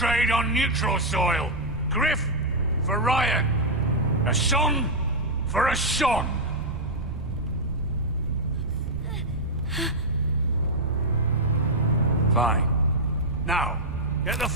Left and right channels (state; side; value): noise; right; rumble, 10 dB below the sound